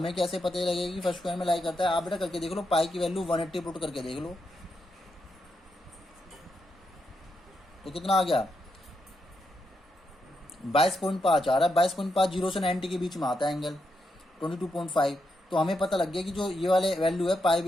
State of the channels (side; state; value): both; normal; correlation 0.82